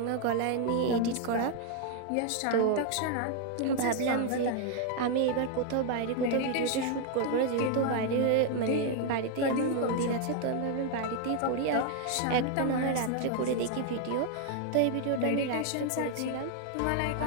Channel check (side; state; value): both; different; correlation 0.00